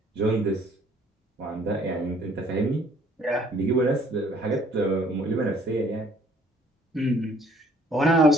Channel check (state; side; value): normal; both; correlation 0.59